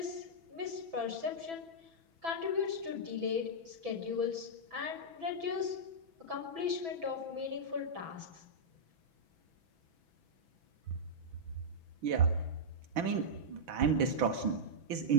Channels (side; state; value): left; late; 6.1 ms